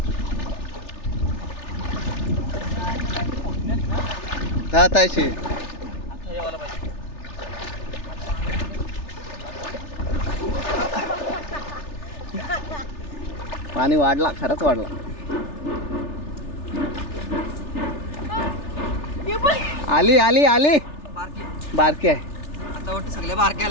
हा तायशी आता यावाला पाहिजे. पाणी वाढला खरंच वाढला. आली आली आली बारकी बारकी आहे आता वाटतं सगळ्या बारक्या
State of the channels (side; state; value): right; late; 3.4 ms